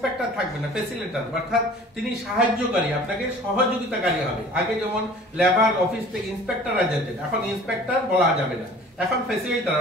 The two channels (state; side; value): normal; both; correlation 0.47